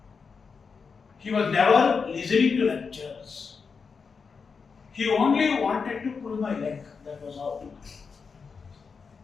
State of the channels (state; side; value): quieter; right; 5.4 dB